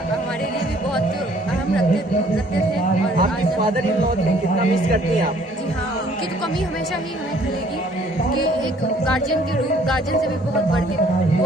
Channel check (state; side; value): normal; both; correlation 0.59